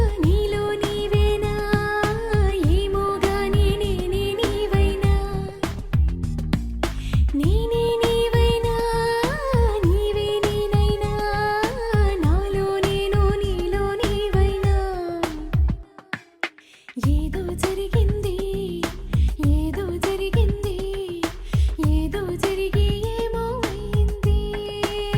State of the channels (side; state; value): both; identical; correlation 1.00